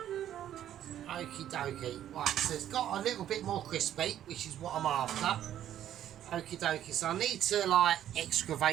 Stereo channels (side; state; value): left; quieter; 11.3 dB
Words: Okie dokie. Right, so it's got a little bit more crispy, which is what I'm after. Okie dokie. So I need to, like,